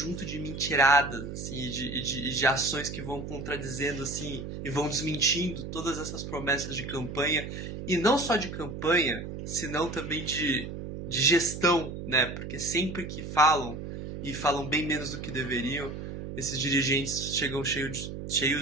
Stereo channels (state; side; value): noise; right; hum, 8 dB below the sound